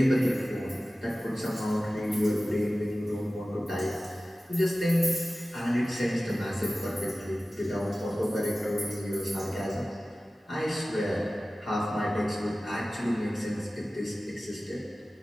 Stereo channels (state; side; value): normal; both; correlation 0.96